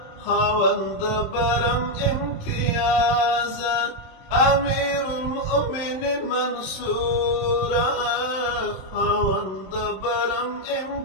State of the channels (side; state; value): right; late; 27 ms